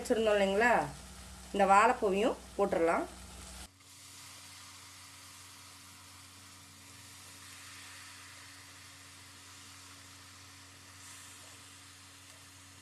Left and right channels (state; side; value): identical; both; correlation 1.00